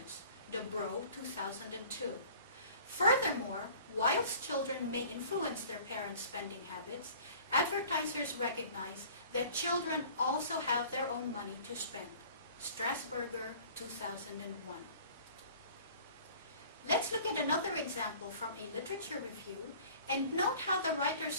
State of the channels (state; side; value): inverted; both; correlation -0.48